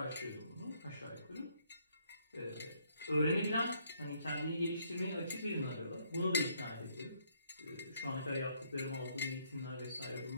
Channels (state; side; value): inverted; both; correlation -0.68